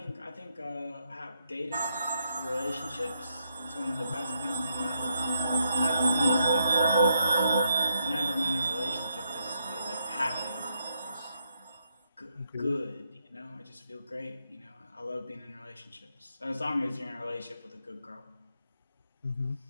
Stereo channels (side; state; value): both; inverted; correlation -0.78